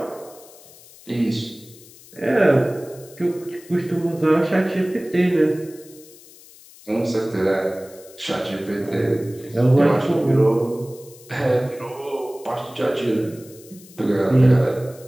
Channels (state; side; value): noise; left; hiss, 22 dB below the sound